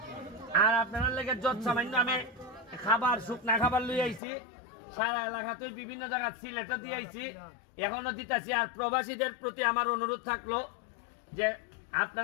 আর আপনার লেগে যত সামান্য আমি খাবার, শুকনা খাবার লই আইছি, সারা এলাকাতে বিভিন্ন জায়গা সিলেটও দিয়ে আইছি, এখনো দিতেছি। আর প্রবাসীদের প্রতি আমার অনুরোধ থাকলো যে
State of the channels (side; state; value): right; drops out; at 4.2 s